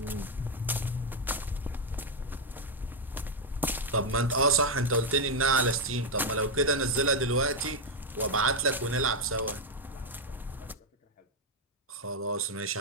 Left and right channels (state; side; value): normal; both; correlation 0.02